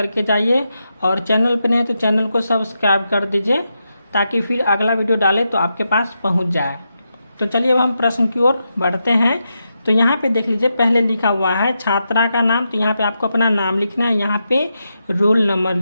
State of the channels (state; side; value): inverted; both; correlation -0.86